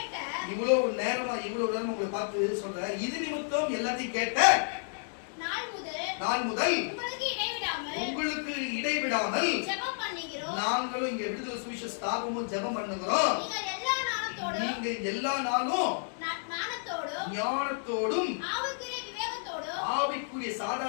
இவ்வளவு நேரம் உங்களை பார்த்து சொல்றேன். இது நிமித்தம் எல்லாத்தையும் கேட்ட நாள் முதல் உங்களுக்கு இடைவிடாமல் ஜெபம் பண்ணுகிறோம். நாங்களும் இங்க விடுதலை சுவிசேஷ ஸ்தாபமும் ஜெபம் பண்ணுகிறோம். நீங்க எல்லா நாளும் ஞானத்தோடும் ஆவிக்குரிய சாதா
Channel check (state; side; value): silent; right; digital silence